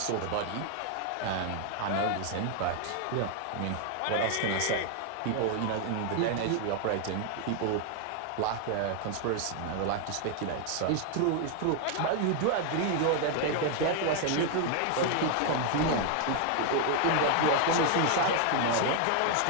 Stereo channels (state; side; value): different; both; correlation 0.00